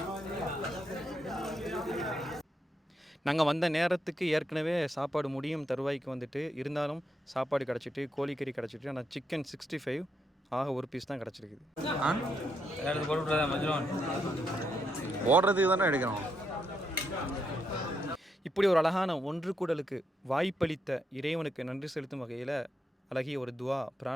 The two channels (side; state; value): both; normal; correlation 0.80